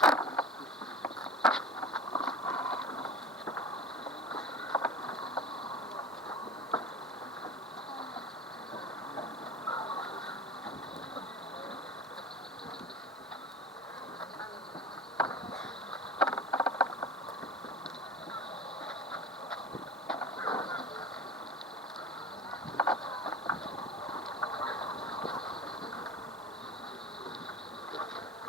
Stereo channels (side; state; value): both; normal; correlation 0.35